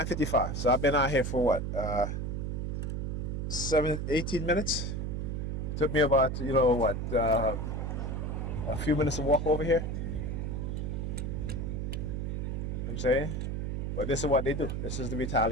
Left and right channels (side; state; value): right; noise; hum, 2 dB below the sound